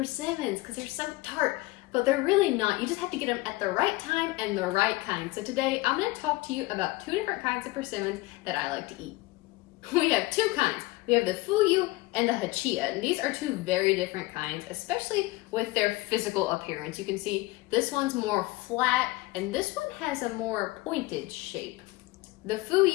because they're so tart. But they're really not. You just have to get them at the right time and the right kind. So today I'm going to talk to you about two different kinds of persimmons that I like to eat. We have two kinds. We have the fuyu and the hachia, and these are two very different kinds, especially with their physical appearance. You can see this one's more flat and this one has a more pointed shape. The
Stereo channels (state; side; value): quieter; right; 20.6 dB